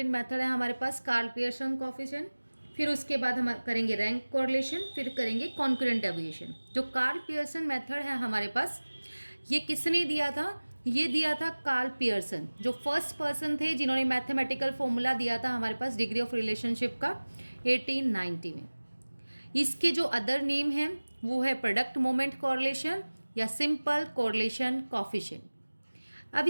मेथड है हमारे पास कार्ल पियर्सन कोफिशिएंट. फिर उसके बाद हम करेंगे रैंक कोरिलेशन, फिर करेंगे कॉन्करेंट डेविएशन. जो कार्ल पियर्सन मेथड है हमारे पास, ये किसने दिया था? ये दिया था कार्ल पियर्सन, जो फर्स्ट पर्सन थे जिन्होंने मैथमेटिकल फॉर्मूला दिया था हमारे पास डिग्री ऑफ रिलेशनशिप का 1890 में. इसके जो अदर नेम हैं वो है प्रोडक्ट मोमेंट कोरिलेशन या सिंपल कोरिलेशन कोफिशिएंट. अब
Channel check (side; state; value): both; inverted; correlation -1.00